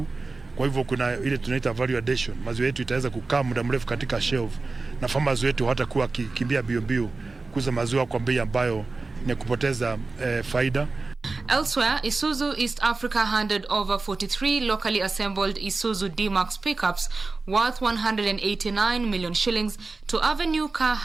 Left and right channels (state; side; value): quieter; left; 3.7 dB